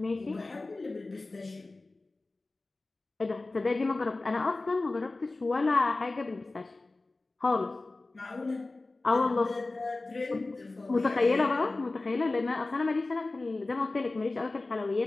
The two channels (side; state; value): right; quieter; 3.2 dB